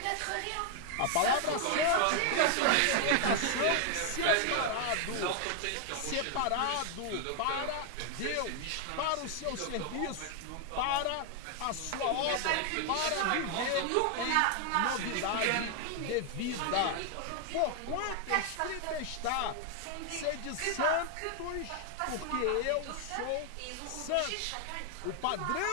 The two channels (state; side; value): different; both; correlation 0.00